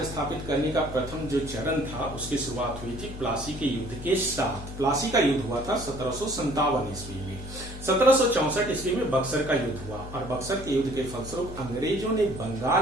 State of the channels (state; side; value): noise; left; hum, 12 dB below the sound